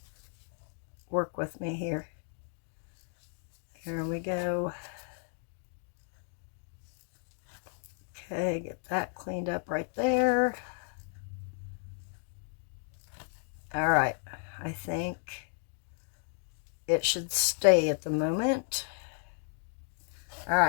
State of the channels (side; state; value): right; silent; 55 dB below the other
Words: Work with me here. There we go. Okay, get that cleaned up right there. All right, I think it should stay at the moment. All